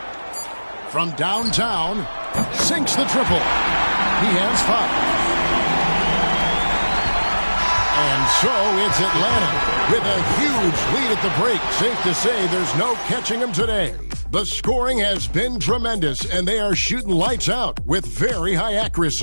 From downtown, sinks the triple. He has 5. And so it's Atlanta with a huge lead at the break. Safe to say there's no catching them today. The scoring has been tremendous, and they are shooting lights out with very high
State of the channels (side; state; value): both; inverted; correlation -1.00